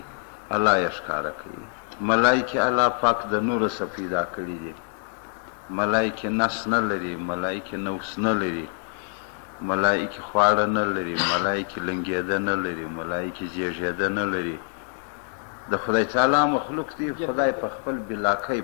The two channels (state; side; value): silent; right; 61 dB below the other